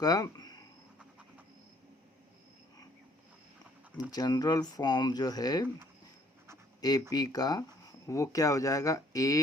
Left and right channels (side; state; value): both; normal; correlation 0.62